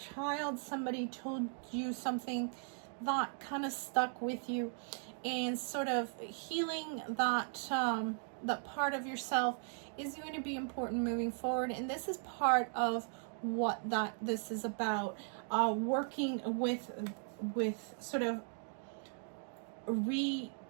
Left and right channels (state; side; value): silent; left; 53 dB below the other